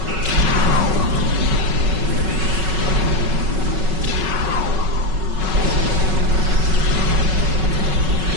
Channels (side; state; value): left; late; 5.4 ms